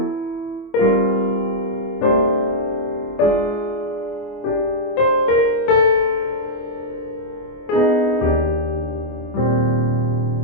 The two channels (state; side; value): late; right; 24 ms